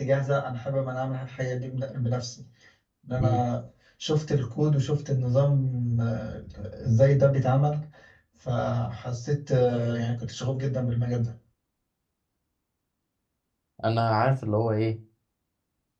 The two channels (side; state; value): both; identical; correlation 1.00